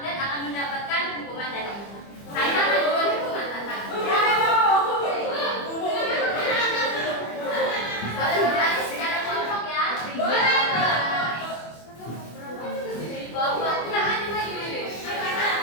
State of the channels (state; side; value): late; right; 25 ms